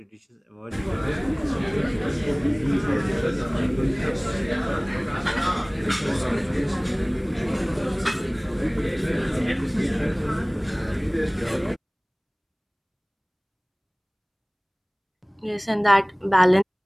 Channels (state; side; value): identical; both; correlation 1.00